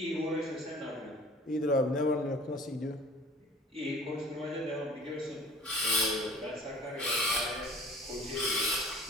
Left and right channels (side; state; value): both; normal; correlation 0.47